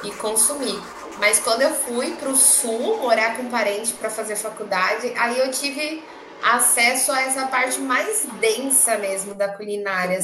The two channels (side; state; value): both; identical; correlation 1.00